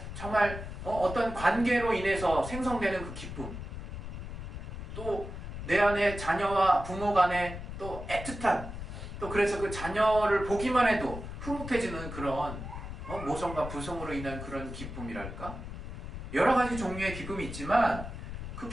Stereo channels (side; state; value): left; noise; rumble, 8 dB below the sound